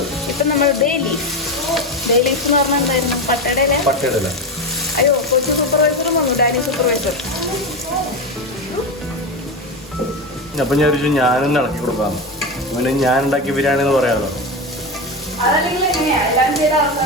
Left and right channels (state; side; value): normal; both; correlation 0.17